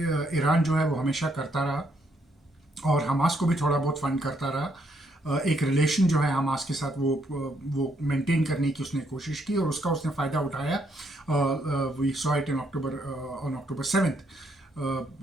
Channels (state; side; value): normal; both; correlation 0.73